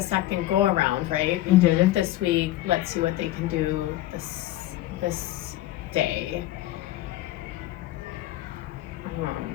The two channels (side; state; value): right; quieter; 15.2 dB